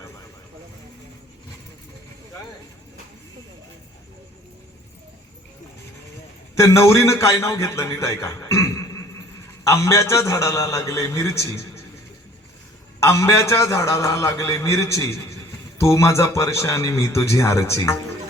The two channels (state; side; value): normal; both; correlation 0.53